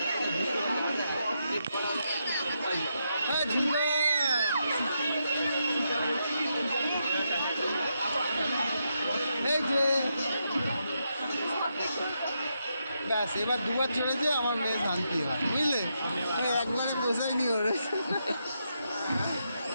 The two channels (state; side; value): inverted; both; correlation -0.82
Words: ঝুমকা এই যে ব্যাস, এবার দুবার চড়েছে, আমার মেয়ে শান্তি হয়, বুঝলে? একবারে পোষায়নি ওর,